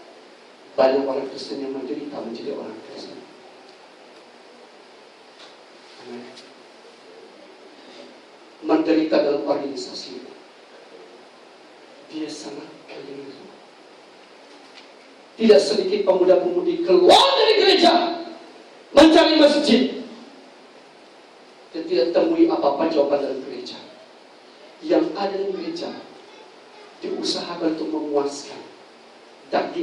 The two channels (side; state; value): both; identical; correlation 1.00